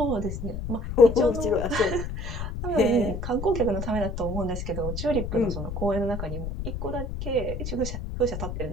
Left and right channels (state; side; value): noise; left; rumble, 5 dB below the sound